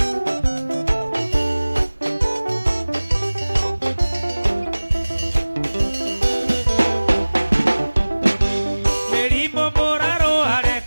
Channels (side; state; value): both; inverted; correlation -1.00